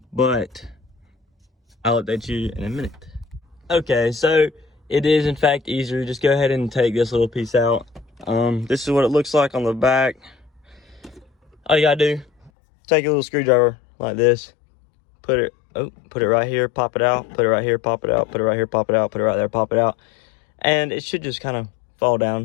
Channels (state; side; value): drops out; right; at 12.5 s